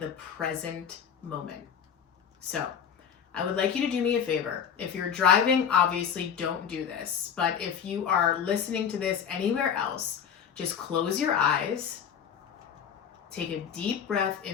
present moment. So, I would like you to do me a favor. If you're driving, obviously don't do this. But if you are listening to this anywhere else, just close your eyes. Take a deep breath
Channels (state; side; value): quieter; right; 7.8 dB